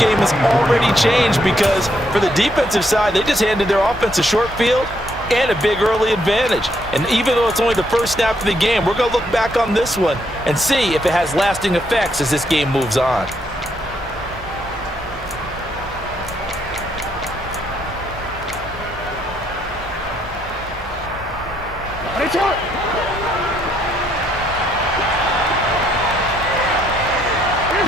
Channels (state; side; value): normal; both; correlation 0.73